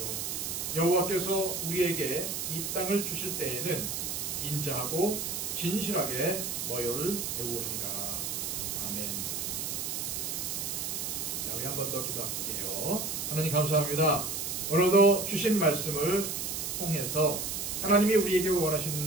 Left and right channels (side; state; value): right; noise; hiss, 3 dB below the sound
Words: 여호와께서 우리에게 이 땅을 주실 때에는 인자하고 진실하게 너희를 대우하리라. 아멘. 자, 우리 한 번 더 기도할게요. 하나님 감사합니다. 오늘도 주신 말씀을 통해서 하나님이 우리에게